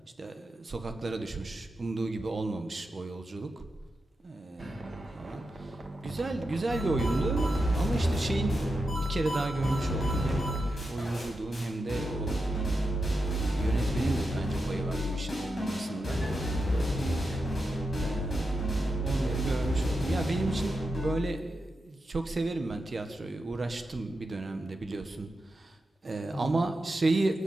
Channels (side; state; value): both; normal; correlation 0.88